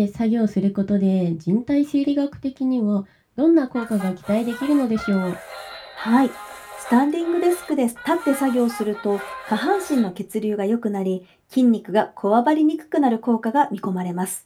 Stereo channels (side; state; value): both; identical; correlation 1.00